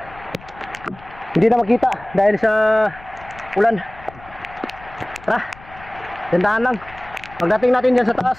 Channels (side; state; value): left; noise; rumble, 21 dB below the sound